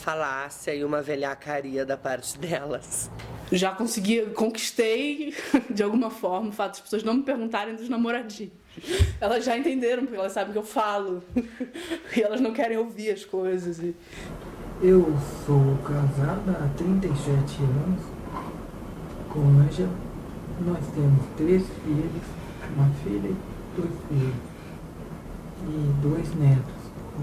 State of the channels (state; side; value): identical; both; correlation 1.00